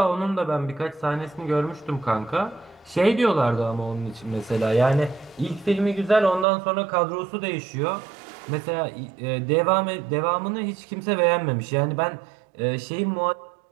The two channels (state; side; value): drops out; left; at 6.5 s